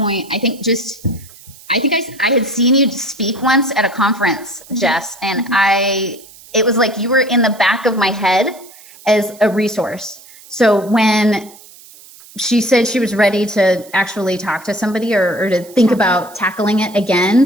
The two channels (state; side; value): noise; right; hiss, 22 dB below the sound